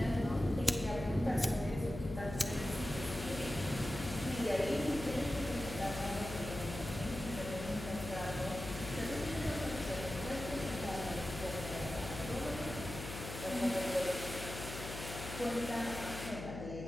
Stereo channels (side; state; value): left; noise; hum, 8 dB below the sound